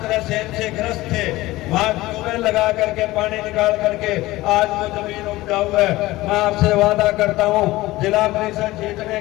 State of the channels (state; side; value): quieter; right; 18.4 dB